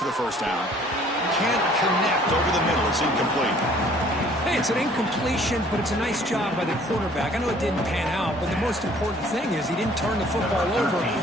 the first down. Can't connect over the middle. It's incomplete. Hey, it's an incompletion, but it's a nice job by the quarterback. I know it didn't pan out, but the most important thing is he didn't turn the football over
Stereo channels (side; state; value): both; normal; correlation 0.56